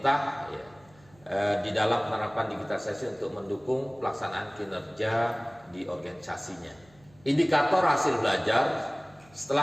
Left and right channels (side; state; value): right; noise; hum, 29 dB below the sound